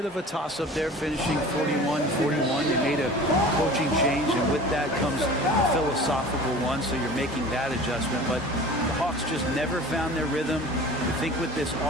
of a toss-up there, finishing 41-41. They made a coaching change, and with that comes a philosophical one, so you're making that adjustment. But the Hawks just never found their rhythm. I think with this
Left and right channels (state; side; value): normal; both; correlation 0.41